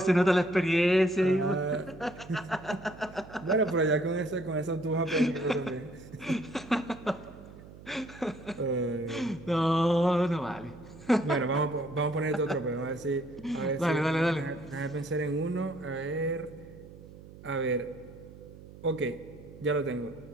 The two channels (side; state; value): right; noise; hum, 18 dB below the sound